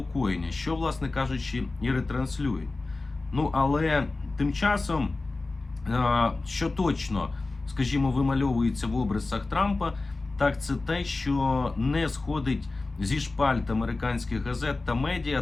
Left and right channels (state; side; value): quieter; right; 3.4 dB